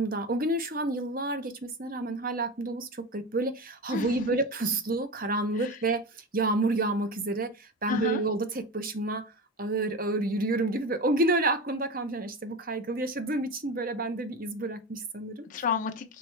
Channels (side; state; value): both; normal; correlation 0.25